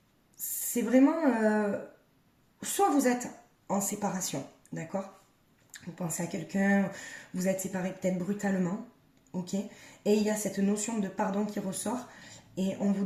c'est vraiment... soit vous êtes en séparation, d'accord? Vous pensez à quelqu'un, vous êtes séparés peut-être brutalement, ok? Et il y a cette notion de pardon qui ressort. Et on vous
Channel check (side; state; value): both; identical; correlation 1.00